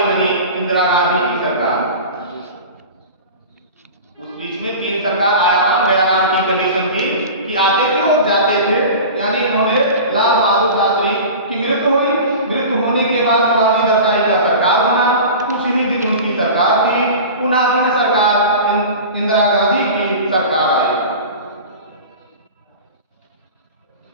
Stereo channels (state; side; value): inverted; both; correlation -0.34